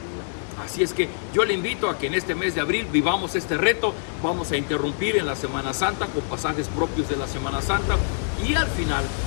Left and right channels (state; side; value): silent; right; 62 dB below the other